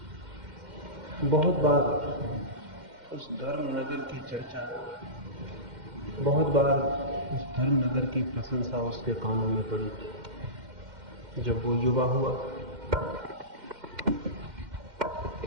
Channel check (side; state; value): left; late; 2.1 ms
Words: बहुत बार उस धर्म नगर की चर्चा, बहुत बार उस धर्म नगर की प्रशंसा उसके कानों में पड़ी। जब वो युवा हुआ